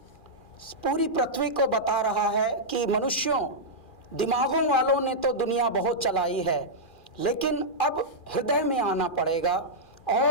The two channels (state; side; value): late; right; 2.4 ms